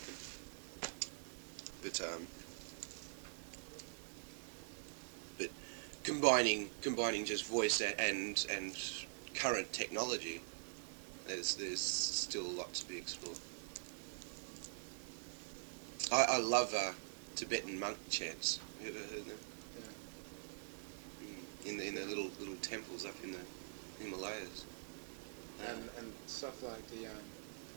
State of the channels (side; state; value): left; silent; digital silence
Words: but combining just voice and current technology, there's still a lot to be explored. I love Tibetan monk chants. Have you ever heard them? Yeah. In the little temples up in the Himalayas. And stuff like the